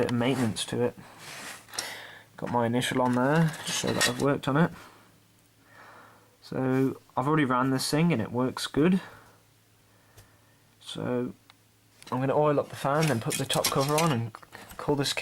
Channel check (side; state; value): both; identical; correlation 1.00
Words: of maintenance to it. Got my initial on there to show that I've worked on it. So I've already ran this thing and it works good. So I'm going to oil up the fan, then put the top cover on and call this